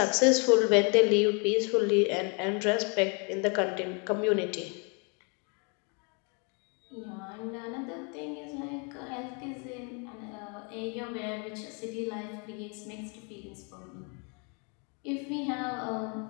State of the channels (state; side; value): quieter; right; 35.6 dB